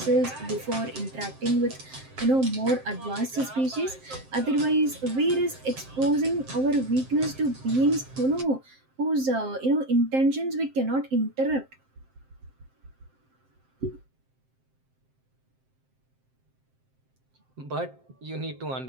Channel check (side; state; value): left; late; 7.6 ms